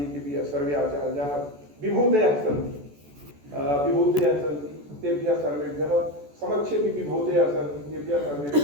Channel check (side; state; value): left; late; 14 ms